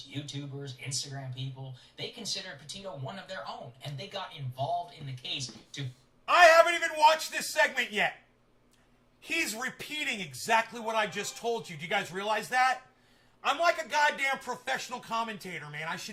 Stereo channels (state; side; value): identical; both; correlation 1.00